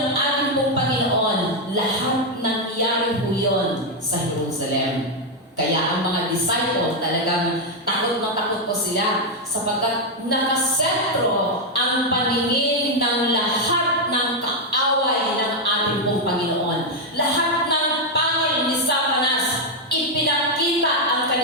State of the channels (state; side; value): normal; both; correlation 0.02